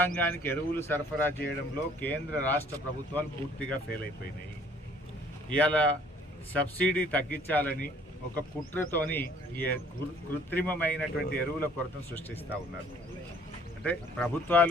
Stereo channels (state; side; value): normal; both; correlation 0.57